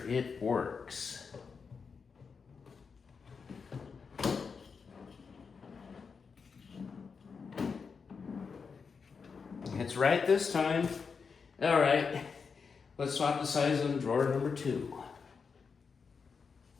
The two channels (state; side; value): quieter; right; 5.5 dB